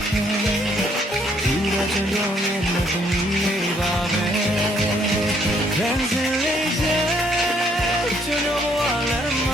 တယ်ဒီတော့ကျွန်တော်ရဲ့မသမီးလေးပါပဲခံစလေးတဲ့ကျွန်တော်ဘဝလည်းမ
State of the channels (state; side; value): normal; both; correlation 0.67